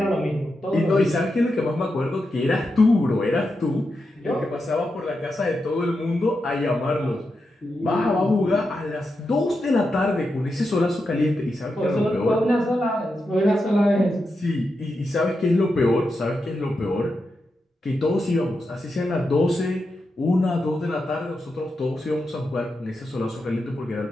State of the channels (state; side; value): normal; both; correlation 0.87